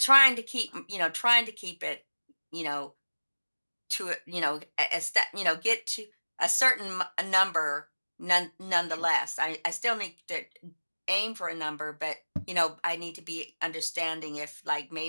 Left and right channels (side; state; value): both; inverted; correlation -1.00